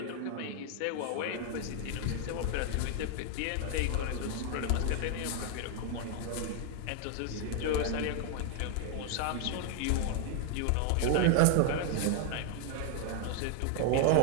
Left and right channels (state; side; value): different; both; correlation 0.00